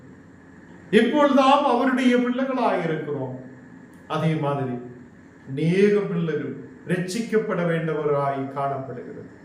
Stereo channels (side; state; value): both; identical; correlation 1.00